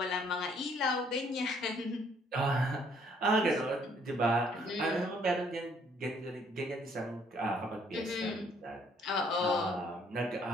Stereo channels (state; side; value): normal; both; correlation 0.64